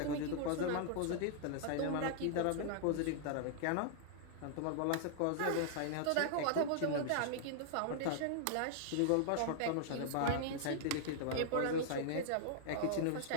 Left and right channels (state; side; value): different; both; correlation -0.01